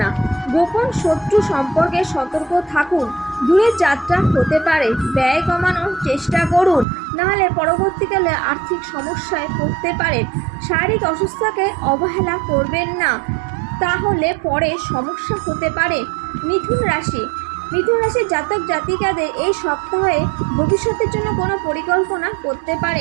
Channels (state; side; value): drops out; left; at 6.9 s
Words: গোপন শত্রু সম্পর্কে সতর্ক থাকুন। দূরের যাত্রা হতে পারে, ব্যয় কমানোর চেষ্টা করুন, নাহলে পরবর্তীকালে আর্থিক সমস্যায় পড়তে পারেন। শারীরিক অসুস্থতাকে অবহেলা করবেন না, তাহলে পরে সমস্যা হতে পারে। মিথুন রাশির জাতক জাতিকাদের এই সপ্তাহে ভবিষ্যতের জন্য কোনো পরিকল্পনা করতে